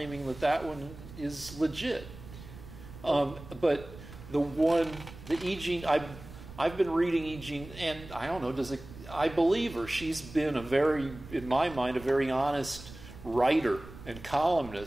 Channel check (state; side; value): noise; right; rumble, 16 dB below the sound